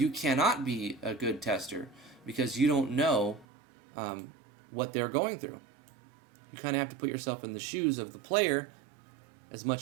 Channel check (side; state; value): left; drops out; at 3.5 s